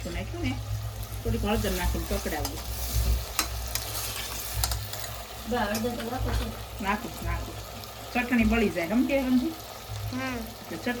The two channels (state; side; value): identical; both; correlation 1.00